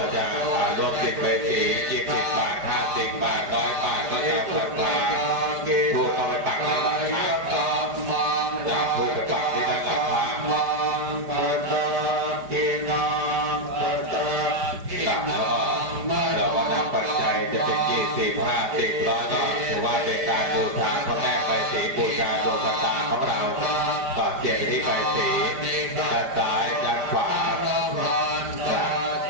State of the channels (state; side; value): late; left; 5.0 ms